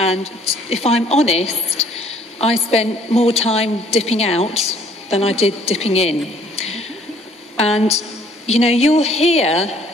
if I'm honest, I spent more time dipping out than I did dipping in. And, you know, you'll hear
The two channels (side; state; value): both; normal; correlation 0.59